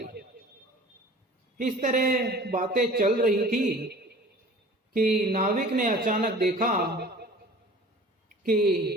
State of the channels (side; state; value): both; normal; correlation 0.44